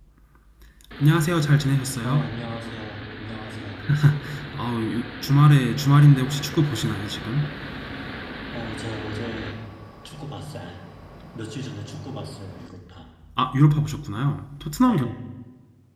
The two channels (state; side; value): identical; both; correlation 1.00